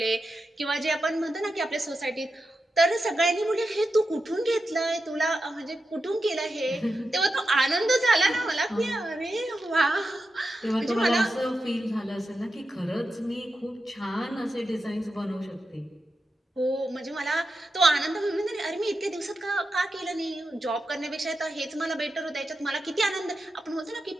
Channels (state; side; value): normal; both; correlation 0.89